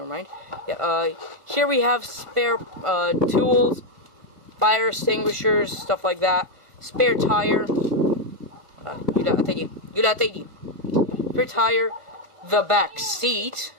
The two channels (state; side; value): late; left; 1.5 ms